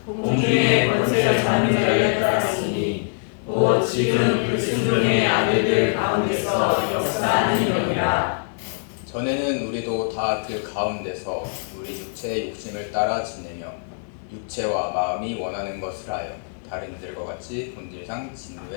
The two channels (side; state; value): right; silent; 63 dB below the other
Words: 공중의 권세를 잡는 자를 따랐으니 곧 지금 불순종의 아들들 가운데서 역사하는 영이라. 전에는 우리도 다 그 가운데서 우리 육체의 욕심을 따라 지내며 육체와 마음이 원하는 것을 하여 다른 이들과 같이 본질상